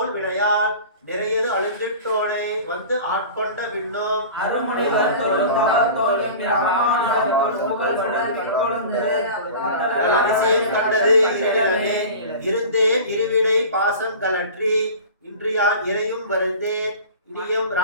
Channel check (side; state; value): both; inverted; correlation -0.38